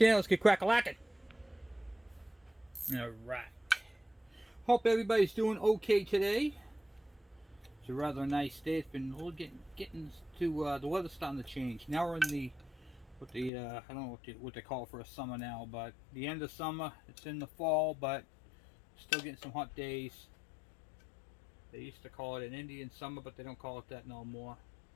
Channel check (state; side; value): drops out; right; at 13.5 s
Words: Let's get crack-a-lacking. Alright. Hope everybody's doing okay today. It's a rather nice day. It's been a little getting to the weather's starting to change. Now we're in the I don't know what they call it for a summer now, but the end of summer. It's in the fall, but still getting some hot days. They used to call it an Indian summer, but they don't call it that no more.